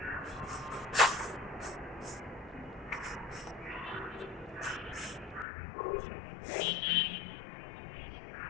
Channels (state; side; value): drops out; right; at 5.5 s